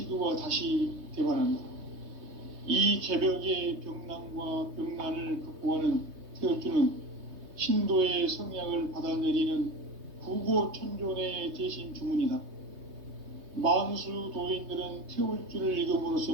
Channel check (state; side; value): late; left; 3.2 ms